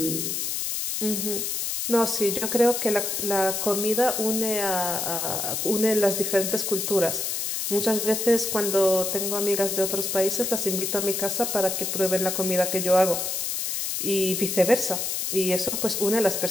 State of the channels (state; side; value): noise; left; hiss, 1 dB below the sound